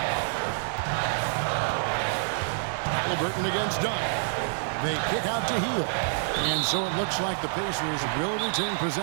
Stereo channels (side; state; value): left; silent; 58 dB below the other